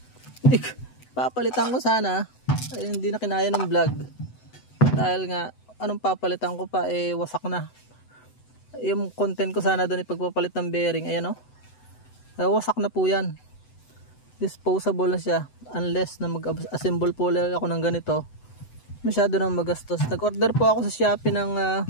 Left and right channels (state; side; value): late; right; 7.9 ms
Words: Papalitan ko sana, ay, hindi na kinaya ng vlog dahil nga anong papalitan ko pa, wasak na yung content ko. Sana doon ipagpapalit ng bearing, ayan wasak na po yan, disposable na siya, unless na mag-assemble po ako ng ganito, masyado nang magastos. Nag-order po ako sa Shopee ng